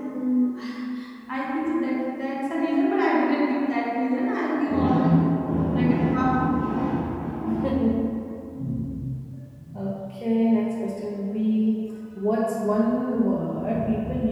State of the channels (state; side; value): identical; both; correlation 1.00